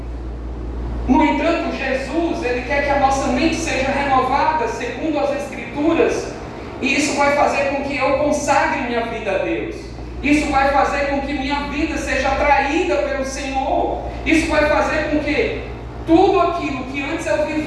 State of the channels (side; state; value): both; identical; correlation 1.00